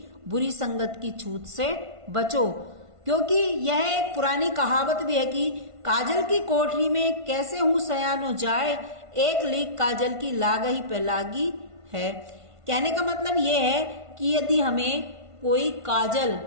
बुरी संगत की छूत से बचो। क्योंकि यह एक पुरानी कहावत भी है कि काजल की कोठरी में कैसे हूं सयानो जाए, एक लीक काजल की लागही पे लागी है। कहने का मतलब यह है कि यदि हमें कोई काजल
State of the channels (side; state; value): left; late; 1.5 ms